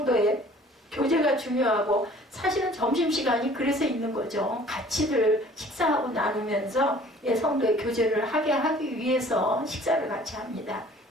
교제가 중요하고 사실은 점심시간이 그래서 있는 거죠. 같이들 식사하고 나누면서 성도의 교제를 하기 위해서 식사를 같이 합니다.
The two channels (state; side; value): normal; both; correlation 0.51